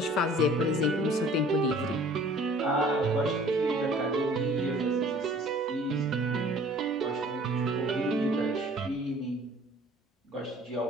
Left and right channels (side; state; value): both; normal; correlation 0.51